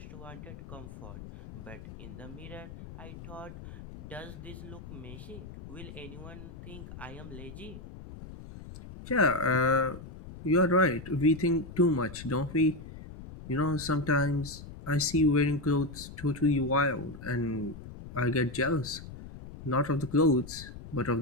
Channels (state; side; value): noise; left; rumble, 14 dB below the sound